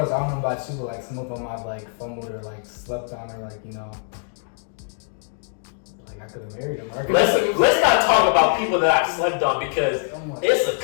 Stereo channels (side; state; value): right; silent; 63 dB below the other